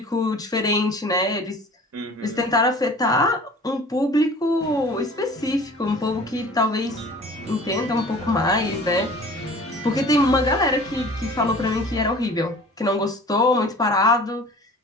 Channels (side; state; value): both; normal; correlation 0.45